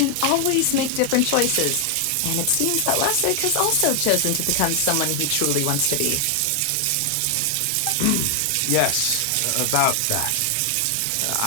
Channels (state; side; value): different; both; correlation 0.00